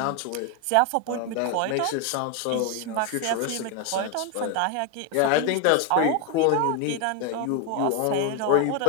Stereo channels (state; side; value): different; both; correlation 0.01